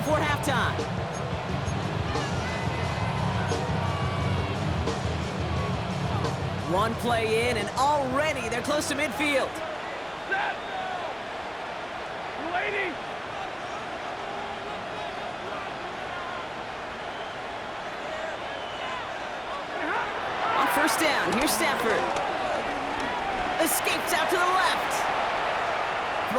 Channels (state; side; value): identical; both; correlation 1.00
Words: halftime. One play in, and already they're close to midfield. Set! Lady! first down. Here's Stafford. Escapes out to the left.